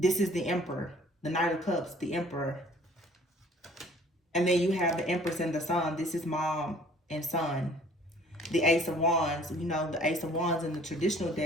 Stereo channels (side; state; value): both; normal; correlation 0.54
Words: is the Emperor, the Knight of Cups, the Emperor. And then you have the Empress and the Sun. This is mom and son. The Ace of Wands, the Ace of Wands in the traditional